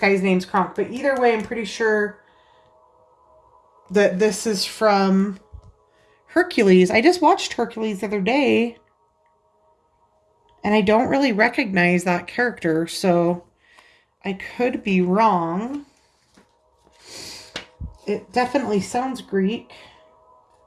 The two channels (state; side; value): identical; both; correlation 1.00